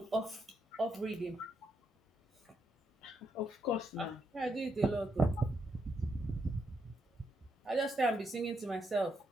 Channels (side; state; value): both; normal; correlation 0.80